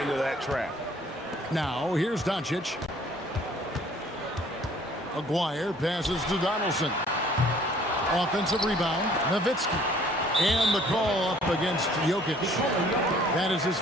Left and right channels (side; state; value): both; normal; correlation 0.56